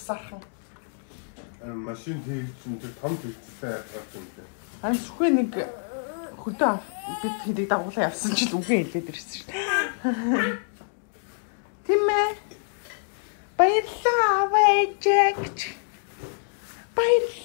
Машин хийсэн чинь том зүйлсээ гаргасан юм. Ань зөвхөн нэг хөдөө бид хэдий дагуулаа явсан ч л үгүй хэлээд ирсэн шүү. Тийм ээ. Баярлалаа аваа ээжээч.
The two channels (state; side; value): silent; right; digital silence